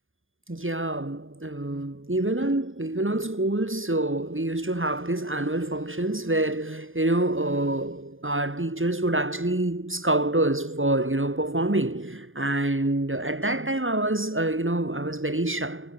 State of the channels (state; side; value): late; left; 0.59 ms